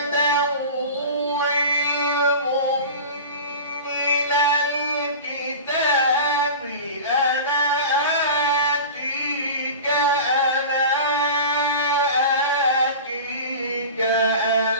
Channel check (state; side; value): inverted; both; correlation -0.33